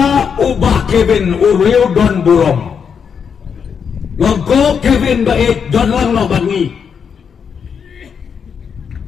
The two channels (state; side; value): quieter; right; 6.8 dB